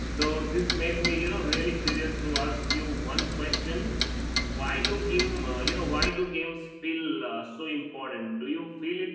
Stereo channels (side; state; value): both; identical; correlation 1.00